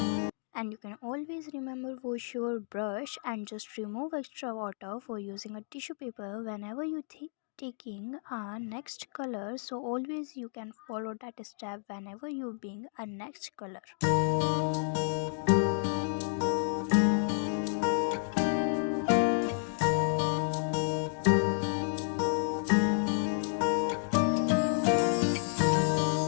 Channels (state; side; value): silent; right; digital silence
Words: And you can always remember wash your brush and just remove extra water for using a tissue paper whenever you taking a next color. So always you can follow that step whenever you being a next color.